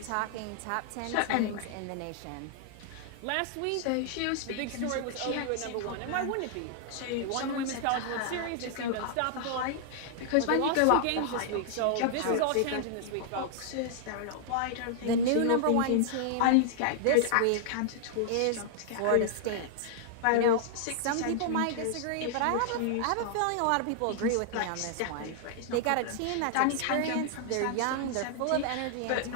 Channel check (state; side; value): different; both; correlation -0.01